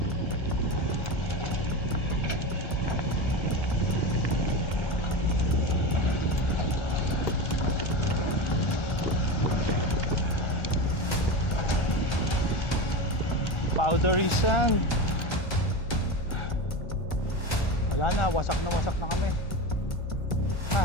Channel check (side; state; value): right; late; 1.3 ms